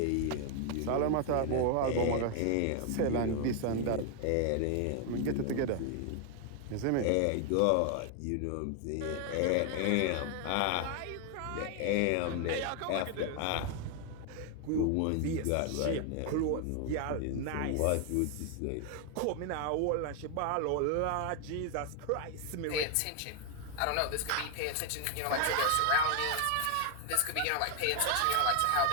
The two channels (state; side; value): different; both; correlation 0.00